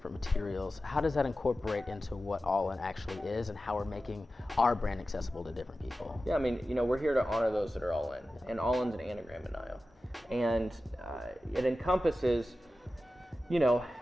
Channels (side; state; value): both; normal; correlation 0.94